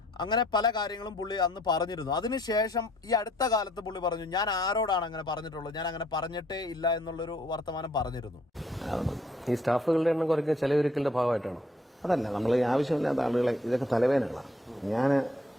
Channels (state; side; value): normal; both; correlation 0.63